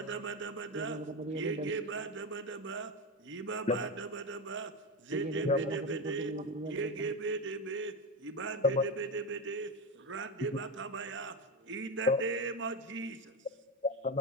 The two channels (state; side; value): normal; both; correlation 0.16